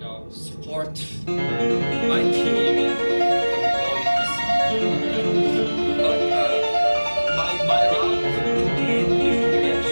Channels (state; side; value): inverted; both; correlation -1.00